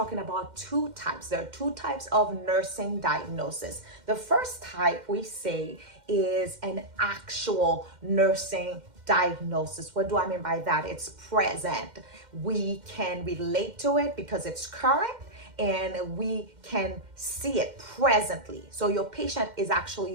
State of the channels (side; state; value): left; late; 2.1 ms